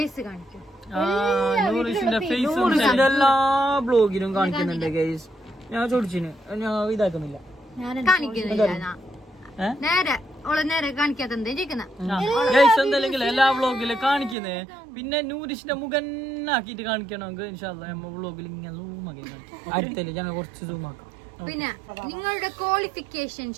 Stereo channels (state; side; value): drops out; left; at 14.4 s